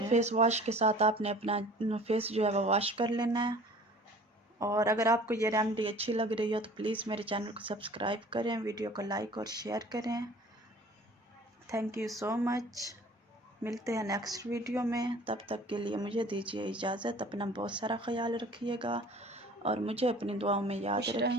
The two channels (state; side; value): normal; both; correlation 0.47